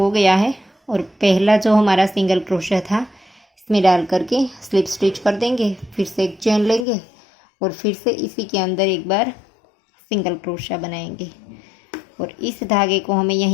गया है और पहला जो हमारा सिंगल क्रोशा था इसमें डाल करके स्लिप स्टिच कर देंगे, फिर से एक चेन लेंगे और फिर से इसी के अंदर एक बार सिंगल क्रोशा बनाएंगे। और इस धागे को हमें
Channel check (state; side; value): drops out; right; at 6.9 s